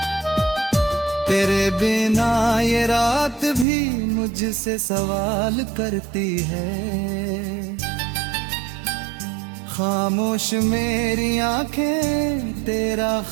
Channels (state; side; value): drops out; left; at 3.7 s